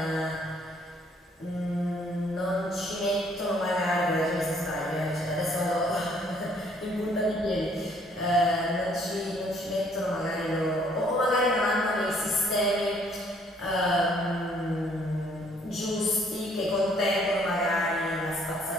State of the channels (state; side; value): normal; both; correlation 0.63